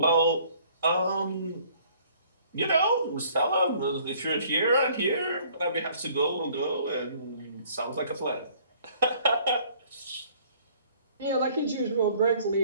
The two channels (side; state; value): both; inverted; correlation -0.57